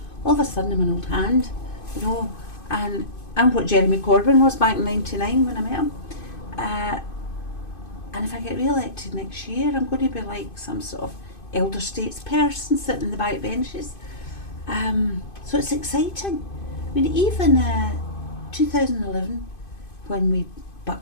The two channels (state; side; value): late; right; 2.5 ms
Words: All of a sudden I'm an old hand, and I'm what Jeremy Corbyn was back in '99 when I met him. And if I get re-elected next year, I'm going to be like some sort of elder statesperson sitting in the back benches. So it's exciting. I mean, even 2011, when we